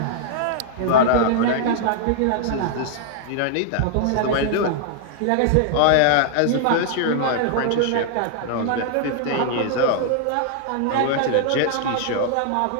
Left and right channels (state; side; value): different; both; correlation -0.01